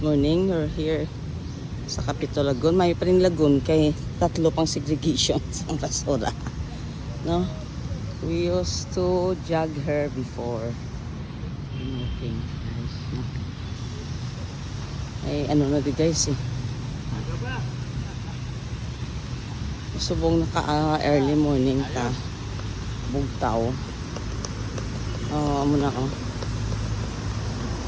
morning. We're here sa Capitol Lagoon. May pa rin lagoon kay tatlo pang segregations ang basura. No? We used to jog her before. Okay, guys. Ay, ano na di guys eh. Subong naka-early morning ta. Bugtaw. Muna ko.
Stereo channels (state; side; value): identical; both; correlation 1.00